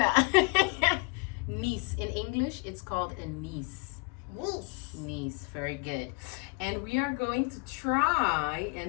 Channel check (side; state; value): right; quieter; 32.4 dB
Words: niece. In English, it's called a niece. Niece, very good. And we are going to try